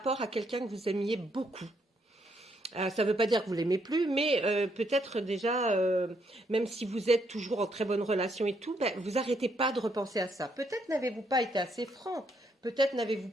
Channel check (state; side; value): normal; both; correlation 0.74